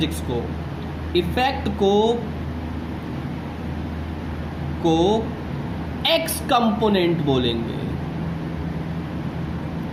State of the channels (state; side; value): identical; both; correlation 1.00